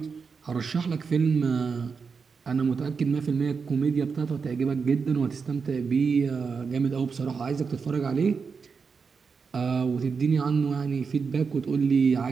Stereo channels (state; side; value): quieter; left; 5.4 dB